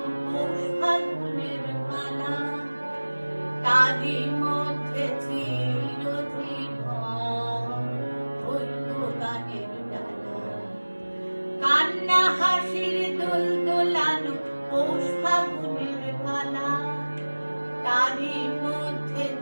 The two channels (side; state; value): both; inverted; correlation -1.00